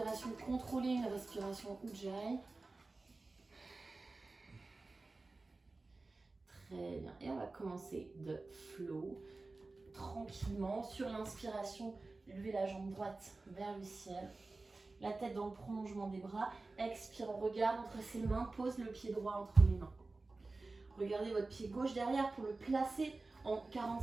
contrôlée, une respiration Ujjayi. Très bien. Et on va commencer de flow. Tranquillement. Sur l'inspiration, levez la jambe droite vers le ciel. La tête dans le prolongement des bras. Expire, on regarde entre ses mains. Pose le pied droit entre les mains. Regardez votre pied gauche derrière pour le placer en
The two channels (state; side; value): quieter; left; 3.4 dB